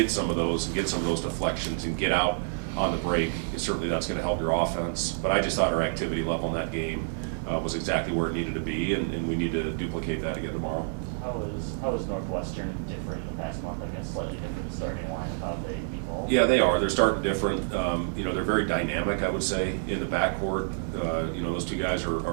some of those and get some of those deflections and get out on the break, certainly that's going to help your offense. But I just thought our activity level in that game was exactly where it needed to be, and we need to duplicate that again tomorrow. How is Northwestern different in the past month? I guess slightly different starting line of how they evolve. Yeah, they are. They're starting different. They're very dynamic, I would say, in the backcourt. Those two guys are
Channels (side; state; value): left; silent; digital silence